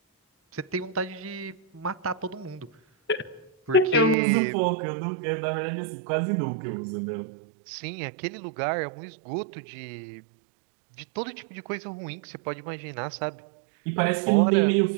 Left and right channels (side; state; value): left; drops out; at 4.2 s